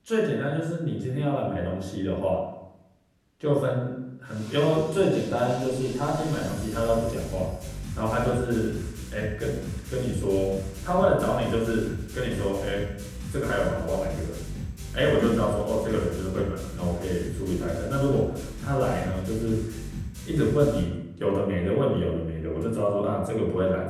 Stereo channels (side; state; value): both; identical; correlation 1.00